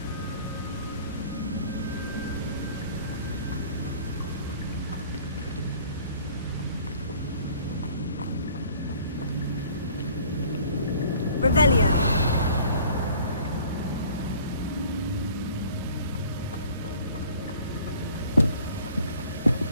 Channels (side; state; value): both; inverted; correlation -0.52